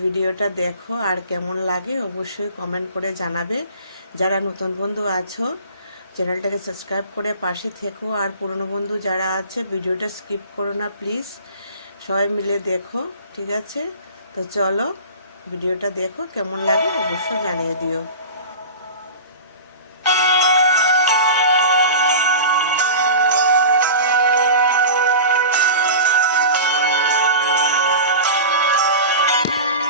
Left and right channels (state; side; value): inverted; both; correlation -0.34